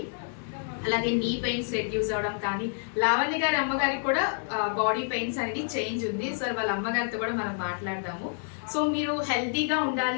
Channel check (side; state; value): right; silent; digital silence